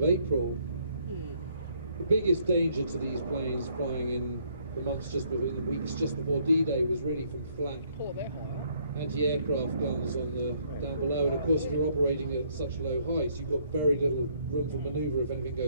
April. The biggest danger to these planes flying in the months just before, in the weeks just before D-Day, was really from flak anti-aircraft guns on the down below. And of course, if you're operating at such low heights, you've got very little room for manoeuvre if anything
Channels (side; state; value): both; inverted; correlation -0.67